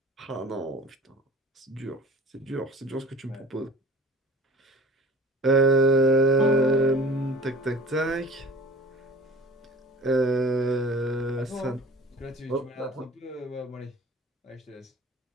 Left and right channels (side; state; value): both; normal; correlation 0.45